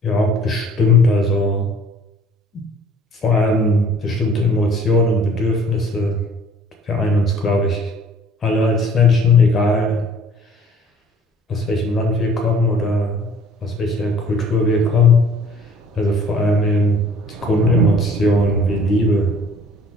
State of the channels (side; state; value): both; normal; correlation 0.53